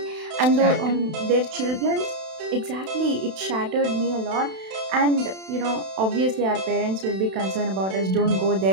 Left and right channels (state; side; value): late; left; 32 ms